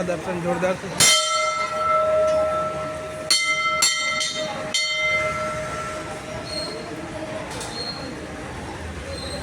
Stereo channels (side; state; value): both; identical; correlation 1.00